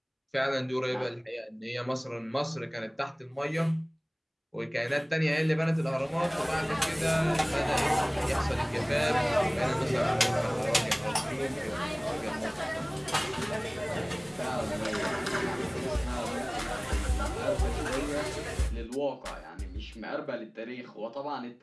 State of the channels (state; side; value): identical; both; correlation 1.00